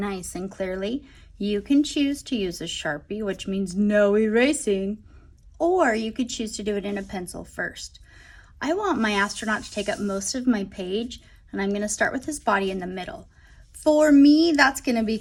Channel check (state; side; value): identical; both; correlation 1.00